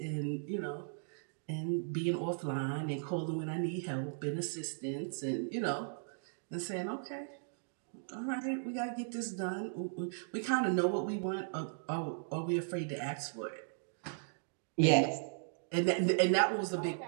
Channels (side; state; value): left; silent; digital silence